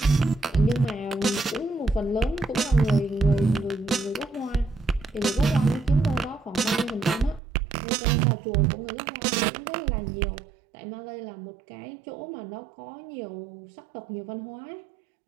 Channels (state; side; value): drops out; left; at 7.4 s